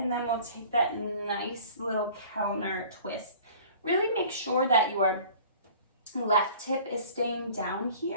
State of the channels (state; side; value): inverted; both; correlation -0.47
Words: then we'll take that nice little counter twist. Really make sure that your left hip is staying down